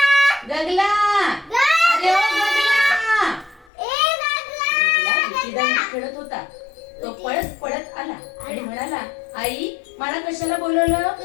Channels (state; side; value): drops out; right; at 3.7 s